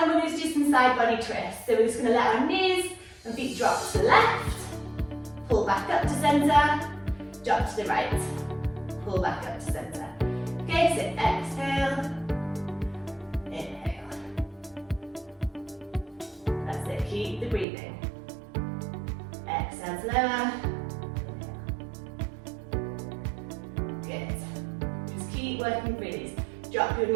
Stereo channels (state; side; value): drops out; left; at 17.7 s